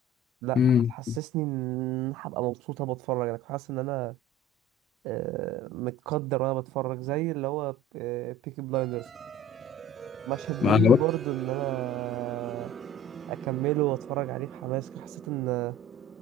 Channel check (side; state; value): both; normal; correlation 0.44